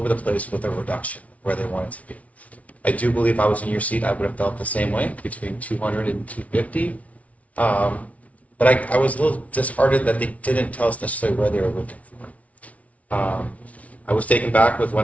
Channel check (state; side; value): late; right; 0.067 ms